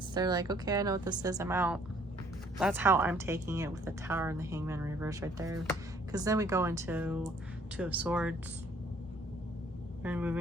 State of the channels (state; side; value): normal; both; correlation 0.61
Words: they're like, okay, I know what this is, I'm out. That's how I'm taking it with the Tower and the Hangman reverse right there. Because then we go into Two of Swords and